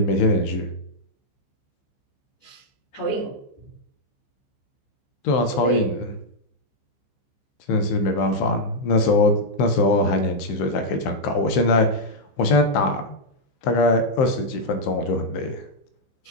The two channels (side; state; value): right; late; 15 ms